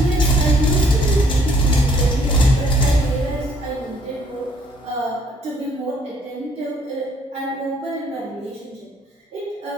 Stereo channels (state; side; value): normal; both; correlation 0.64